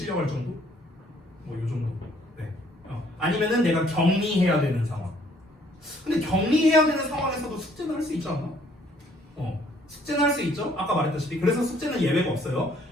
정도? 뭐 요 정도. 네. 아니면은 내가 격리해야 되는 상황. 근데 격리해야 되는 상황에서도 숙제는 할 수 있지 않나? 숙제는 할 수 있죠? 아까 말했다시피. 그래서 숙제는 예외가 없어요.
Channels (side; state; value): both; normal; correlation 0.63